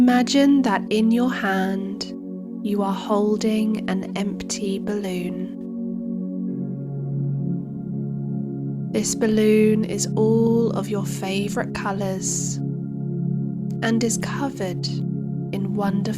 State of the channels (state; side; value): identical; both; correlation 1.00